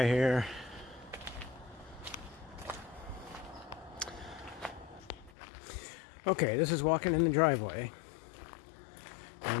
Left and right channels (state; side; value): drops out; right; at 5.3 s